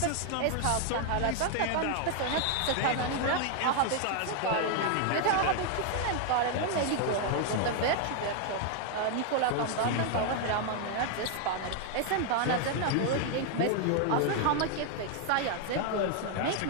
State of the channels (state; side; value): different; both; correlation 0.00